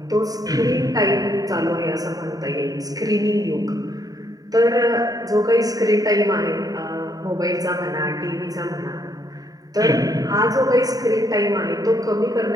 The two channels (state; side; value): late; left; 0.18 ms